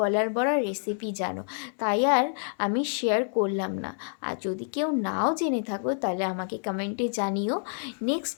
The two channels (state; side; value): silent; right; 57 dB below the other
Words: বড়ার রেসিপি জানো, তাই আর আমি শেয়ার করলাম না। আর যদি কেউ নাও জেনে থাকো তাহলে আমাকে কমেন্টে জানিও। নেক্সট